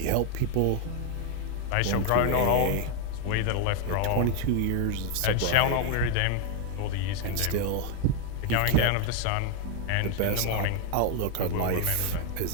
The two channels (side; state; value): both; different; correlation 0.01